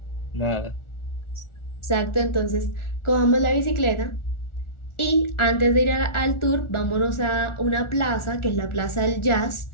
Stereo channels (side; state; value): right; late; 1.4 ms